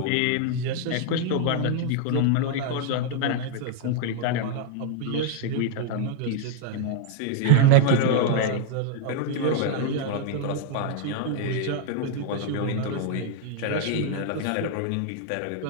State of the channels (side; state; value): both; different; correlation 0.00